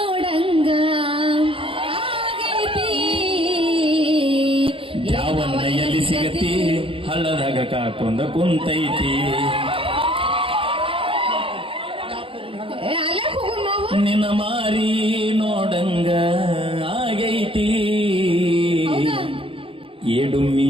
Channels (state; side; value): late; left; 0.26 ms